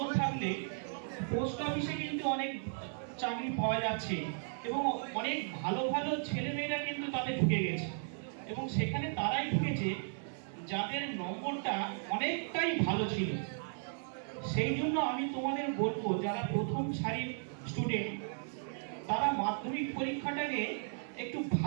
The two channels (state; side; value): silent; left; 54 dB below the other